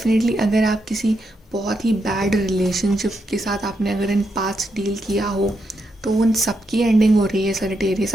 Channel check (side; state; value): both; normal; correlation 0.82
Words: अगर आप किसी बहुत ही बैड रिलेशनशिप के साथ आपने अगर इन पास्ट डील किया हो, तो उन सब की एंडिंग हो रही है सजिटेरियस।